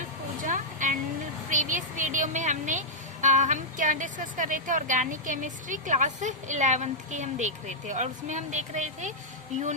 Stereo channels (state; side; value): normal; both; correlation -0.10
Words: Pooja. And previous video में हम क्या डिस्कस कर रहे थे, ऑर्गेनिक केमिस्ट्री क्लास 11th की हम देख रहे थे। और उसमें हम देख रहे थे